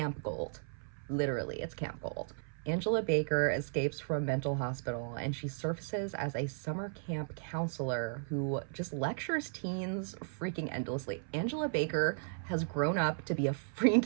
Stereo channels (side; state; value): left; silent; 54 dB below the other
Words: gold. Literally, it's camp gold. Angela Baker escapes from a mental hospital, and she surfaces as a summer camp counselor who just lectures teens freaking endlessly. Angela Baker has grown up to be a